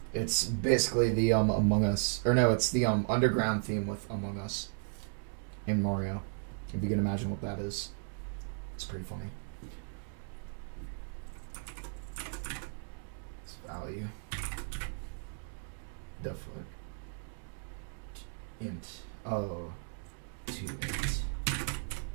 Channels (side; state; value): left; silent; digital silence